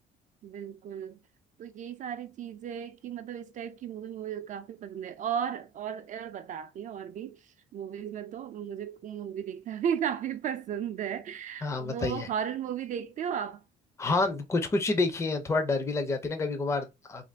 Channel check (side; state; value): both; normal; correlation 0.46